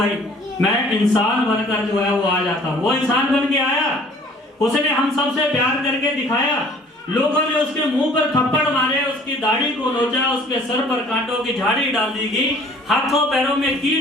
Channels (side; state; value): both; normal; correlation 0.53